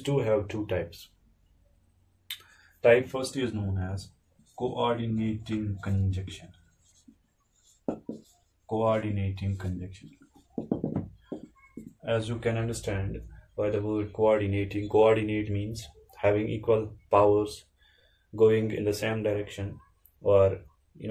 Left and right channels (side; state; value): both; identical; correlation 1.00